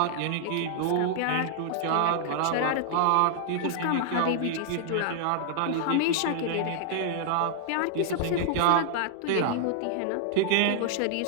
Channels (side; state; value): both; different; correlation -0.01